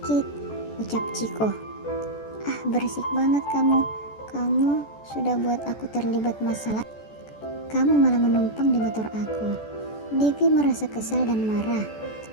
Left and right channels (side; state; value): right; late; 14 ms